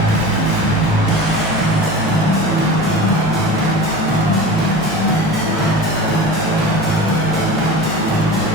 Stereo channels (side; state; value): both; normal; correlation 0.33